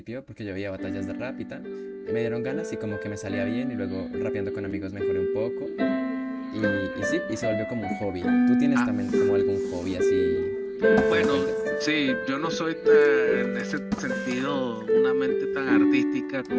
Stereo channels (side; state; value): both; identical; correlation 1.00